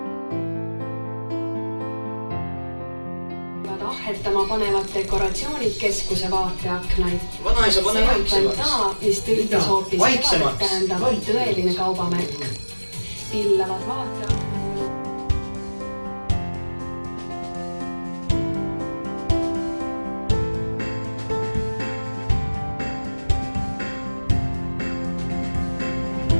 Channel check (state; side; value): inverted; both; correlation -1.00